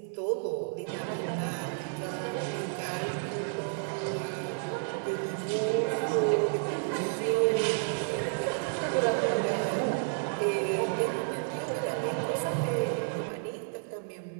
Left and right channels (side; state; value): left; silent; digital silence